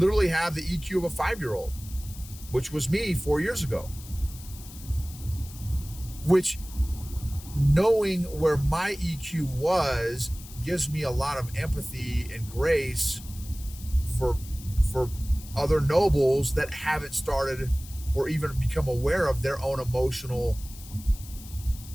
have the EQ of a 5-year-old, which was me 4 years ago. Which, knowing where my EQ was, gives me a lot of empathy and grace for other nobles that haven't started or even become aware of their own emotional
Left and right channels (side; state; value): left; noise; hiss, 17 dB below the sound